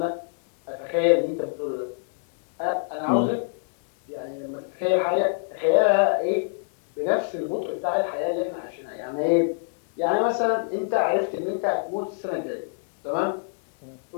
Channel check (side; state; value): right; silent; digital silence